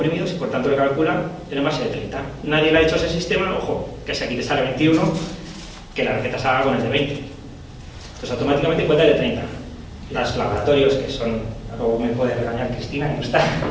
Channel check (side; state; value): both; identical; correlation 1.00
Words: y por tanto le calcula el envase de 30. Nadie le ha dicho a ese sistema, ojo, que si aquí te sale 21, que la receta salga con el de 20. Entonces automáticamente cuenta el de 30. Los laboratorios, que son, luego me puede regañar Cristina, que no está,